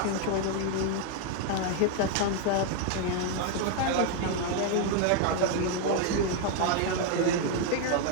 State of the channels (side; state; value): both; different; correlation 0.00